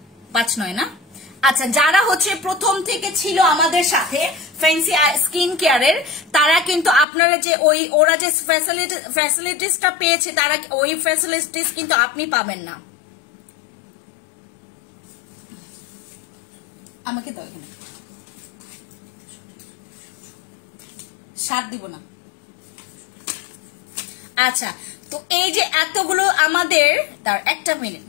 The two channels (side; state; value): right; drops out; at 7.1 s